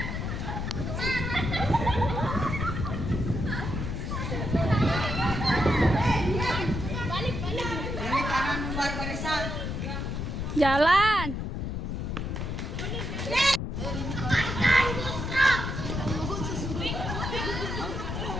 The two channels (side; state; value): left; noise; rumble, 3 dB below the sound